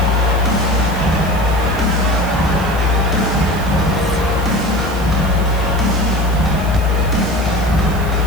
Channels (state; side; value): noise; right; hiss, 18 dB below the sound